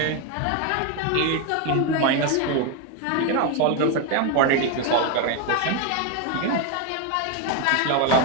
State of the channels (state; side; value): different; both; correlation 0.02